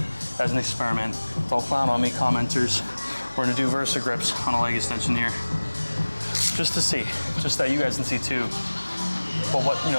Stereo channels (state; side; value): inverted; both; correlation -1.00